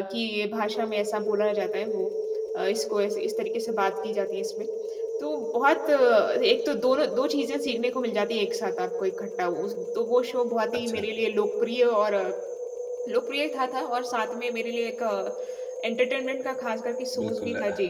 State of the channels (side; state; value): both; identical; correlation 1.00